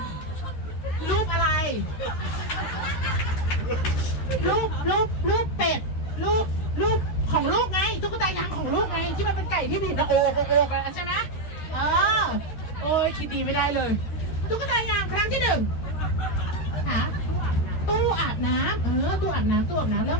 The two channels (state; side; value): late; right; 13 ms